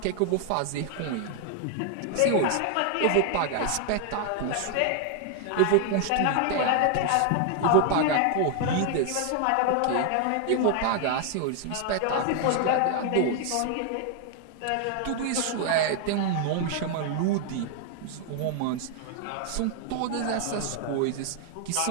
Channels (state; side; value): different; both; correlation 0.00